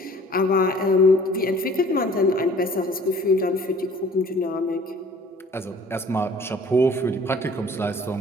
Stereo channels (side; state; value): both; normal; correlation 0.51